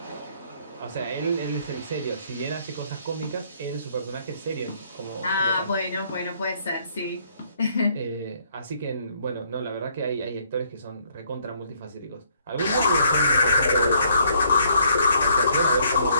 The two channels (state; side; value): inverted; both; correlation -0.67